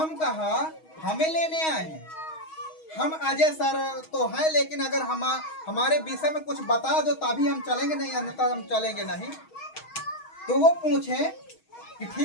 कहा हमें लेने आए हैं, हम अजय सर तो हैं, लेकिन अगर हमारे विषय में कुछ बता दो तभी हम चलेंगे, नहीं अन्यथा हम चलेंगे नहीं। तो वो पूछे कि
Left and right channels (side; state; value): right; late; 6.3 ms